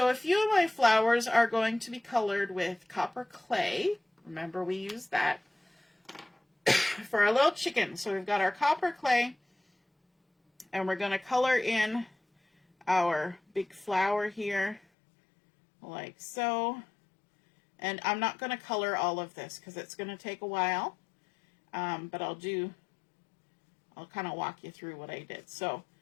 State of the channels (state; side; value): drops out; right; at 14.8 s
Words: a few of my flowers are going to be colored with copper clay. Remember, we used that for our little chicken. So we've got our copper clay, and we're going to color in our big flower here like so. And I'm not going to color all of this because it's going to take a while. But I'll kind of walk you through what I did. So